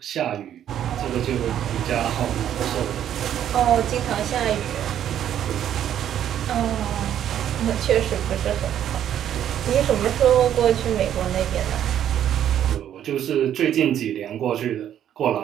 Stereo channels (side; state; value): left; quieter; 10.4 dB